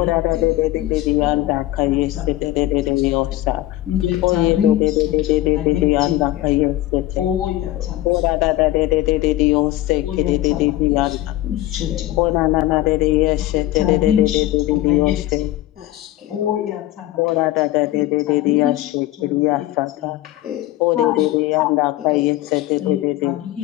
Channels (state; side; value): quieter; right; 15.6 dB